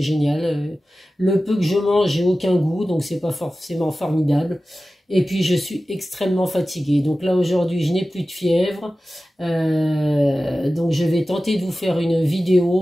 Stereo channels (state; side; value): normal; both; correlation 0.95